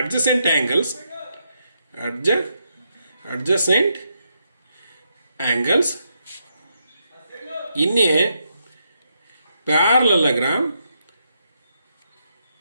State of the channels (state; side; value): inverted; both; correlation -0.81